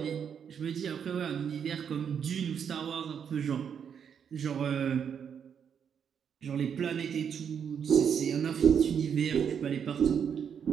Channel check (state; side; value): quieter; left; 7.6 dB